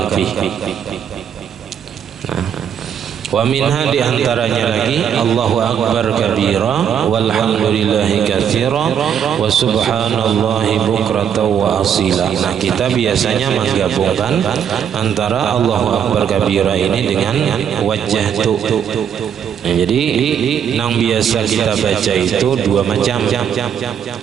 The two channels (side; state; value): left; quieter; 8.4 dB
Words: fihi. Wa minha di antaranya lagi Allahu akbar kabira walhamdulillahi katsira wa subhanallahi bukratan wa asila. Nah kita biasanya menggabungkan antara Allahu akbar kabira ini dengan wajjahtu. Nah, jadi yang biasa kita baca itu dua macam.